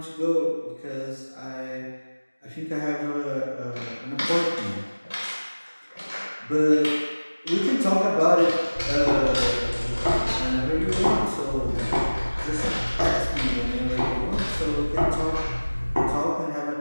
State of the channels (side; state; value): both; inverted; correlation -1.00